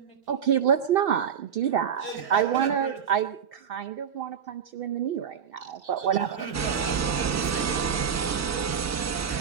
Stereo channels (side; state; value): left; quieter; 7.7 dB